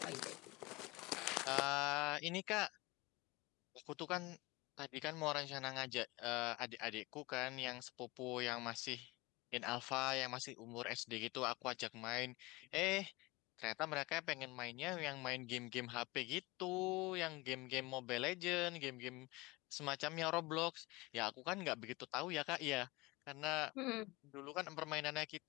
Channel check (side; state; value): right; quieter; 22.9 dB